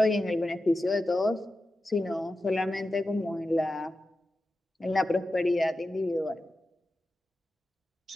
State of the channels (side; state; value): both; normal; correlation 0.92